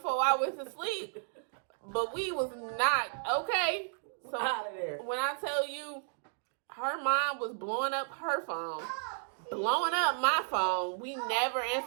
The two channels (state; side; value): silent; left; digital silence